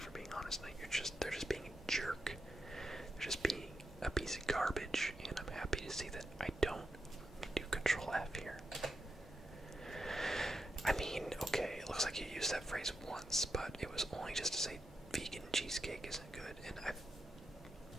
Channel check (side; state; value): both; normal; correlation 0.86